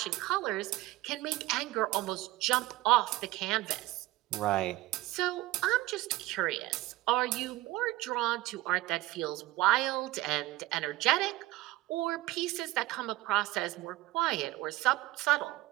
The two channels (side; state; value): left; quieter; 18.1 dB